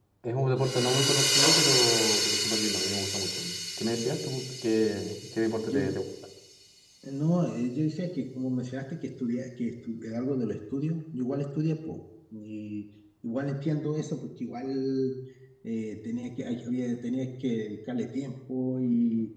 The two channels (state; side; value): identical; both; correlation 1.00